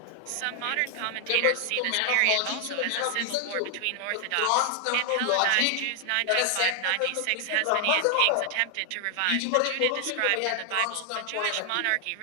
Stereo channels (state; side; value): different; both; correlation 0.00